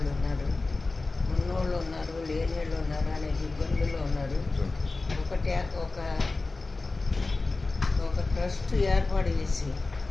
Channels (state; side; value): quieter; right; 3.5 dB